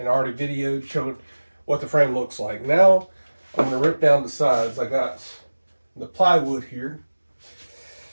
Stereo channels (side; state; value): both; inverted; correlation -1.00